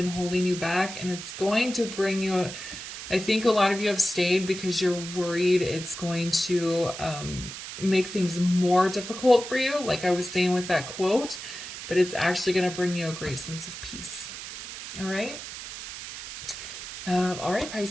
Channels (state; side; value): noise; right; hiss, 10 dB below the sound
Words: holding you back, and it's going to bring you I think a lot of you have stayed because you're worried it's going to make things more difficult for you, like I was saying with that quote, but it's actually going to bring you a great sense of peace. All right? All right,